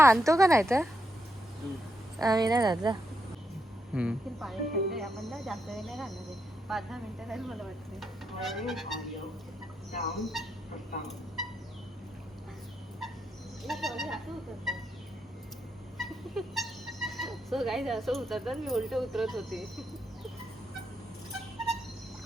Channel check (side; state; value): both; normal; correlation 0.81